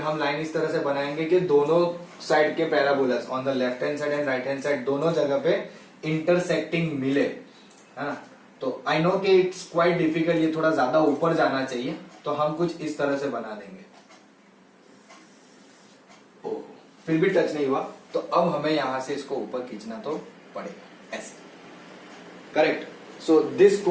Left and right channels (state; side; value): identical; both; correlation 1.00